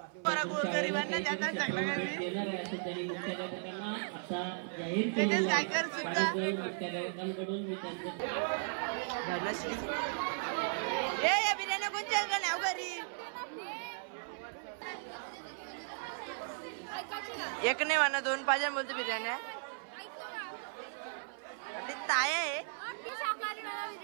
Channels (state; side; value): silent; left; 54 dB below the other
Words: आहे असं त्यांनी मुख्याध्यापकांना आता जाहीर केलेलं आहे. मुख्याध्यापकांकडून मी त्यांचं बिर्याणी कोणत्या नाव घरी एक नाही म्हणा 2 पाहिजे बोलतो बिर्याणी ताय आहे.